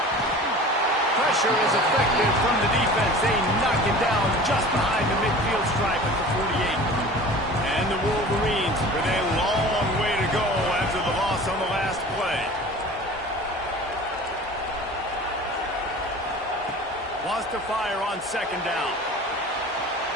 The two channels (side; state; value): both; normal; correlation 0.40